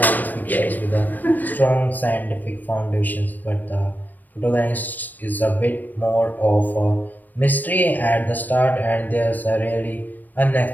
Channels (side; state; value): right; late; 0.087 ms